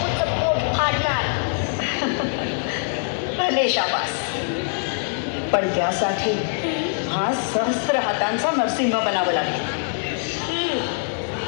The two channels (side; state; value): right; silent; digital silence